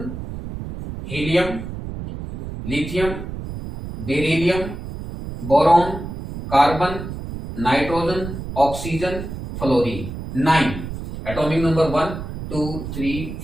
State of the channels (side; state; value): right; noise; rumble, 8 dB below the sound